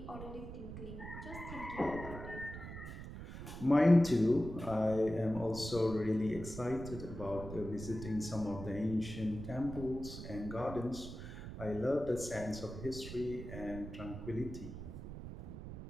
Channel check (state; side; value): noise; right; rumble, 10 dB below the sound